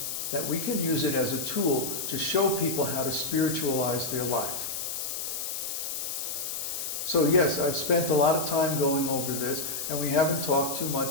that we can use it as a tool to show people how to spiritualize their life. So yes, I've spent a lot of time going over this, and we haven't talked too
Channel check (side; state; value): left; noise; hiss, 4 dB below the sound